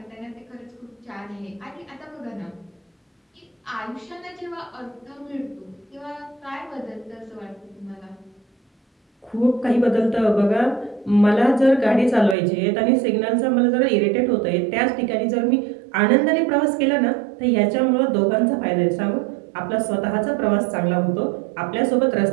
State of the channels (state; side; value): drops out; left; at 12.4 s